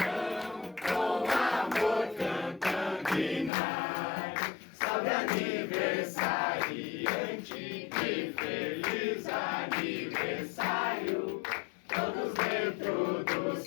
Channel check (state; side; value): drops out; right; at 3.5 s